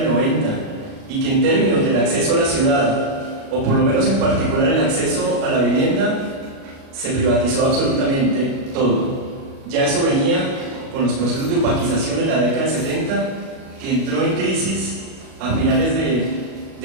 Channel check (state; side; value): late; left; 37 ms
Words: 90 y que en términos del acceso a la ciudad, o por lo menos en particular el acceso a la vivienda, se privatizó absolutamente todo. Ya eso venía con los procesos de opaquización en la década del 70, que entró en crisis a finales